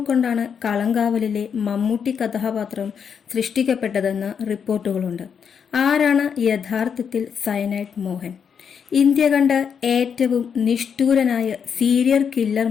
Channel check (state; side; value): quieter; right; 7.1 dB